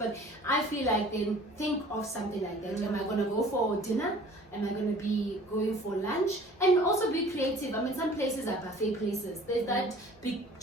I feel like then think of something like that. Am I gonna go for dinner? Am I going to be going for lunch? And also be creative. I mean, some places are buffet places. There's that big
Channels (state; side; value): normal; both; correlation 0.49